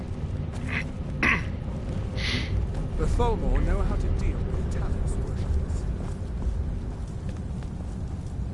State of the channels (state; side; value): identical; both; correlation 1.00